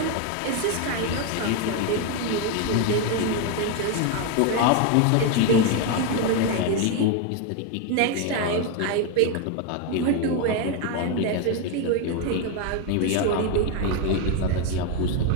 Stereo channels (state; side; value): different; both; correlation 0.02